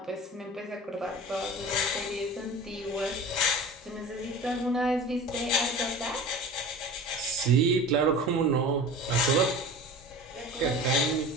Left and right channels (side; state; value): both; normal; correlation 0.36